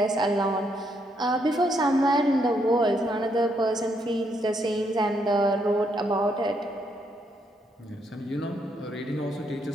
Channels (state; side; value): normal; both; correlation 0.75